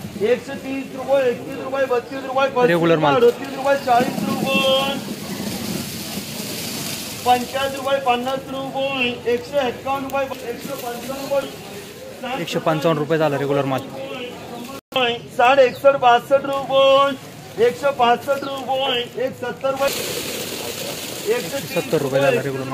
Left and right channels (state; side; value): identical; both; correlation 1.00